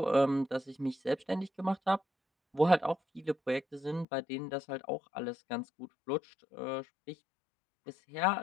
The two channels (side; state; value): right; drops out; at 4.0 s